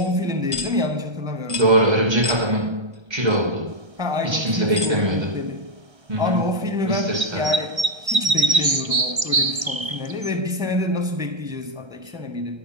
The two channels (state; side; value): late; left; 1.3 ms